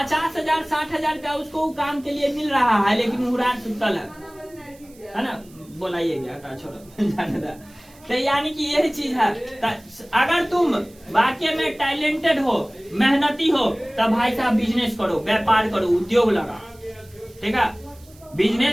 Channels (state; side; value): noise; right; hiss, 26 dB below the sound